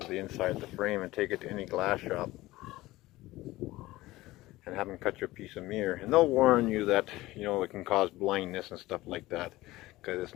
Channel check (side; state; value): right; quieter; 18.2 dB